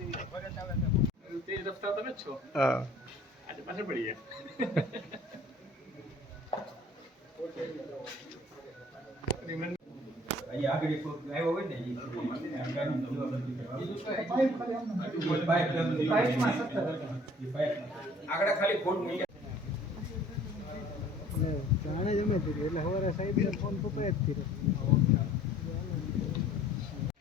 તે રસ્તા તમે જ છો. હા આજે પાછળ પડી ગયા. આગળ ખાલી ફોન મૂકી જાણે જમે એટલે સવારે સાહેબ ફોન પપ્પાએ જ કર્યો.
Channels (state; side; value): normal; both; correlation 0.53